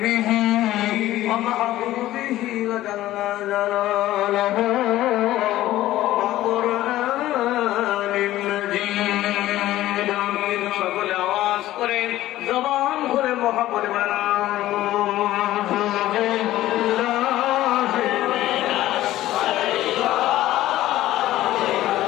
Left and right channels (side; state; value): right; quieter; 14.9 dB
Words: ومحبوبه وجل جلاله وقرآن مجيد সকলে আওয়াজ করে জবান খুলে মহব্বত